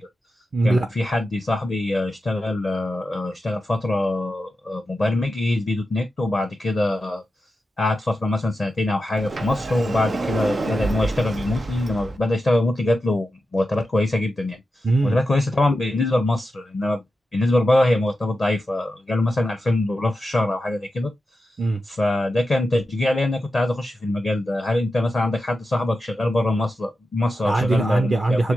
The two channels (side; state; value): both; normal; correlation 0.90